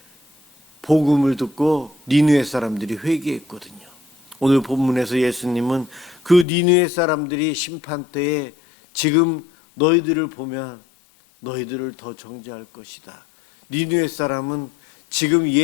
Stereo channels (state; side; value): drops out; right; at 6.5 s